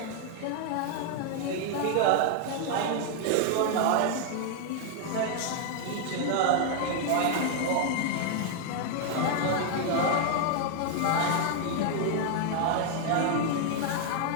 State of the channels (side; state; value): both; different; correlation 0.00